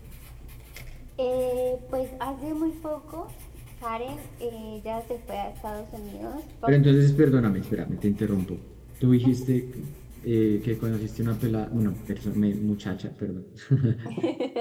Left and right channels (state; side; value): identical; both; correlation 1.00